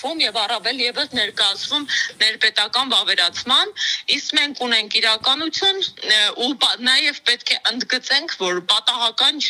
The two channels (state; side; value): identical; both; correlation 1.00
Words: եւ առավել եւս ներկայացվում ներպետական վավերացման, իսկ մենք ունենք իրականություն ու նաեւ պետք է ընդգծենք, որ պատահական